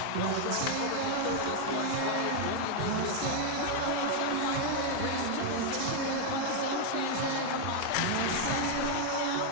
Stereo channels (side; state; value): both; different; correlation 0.00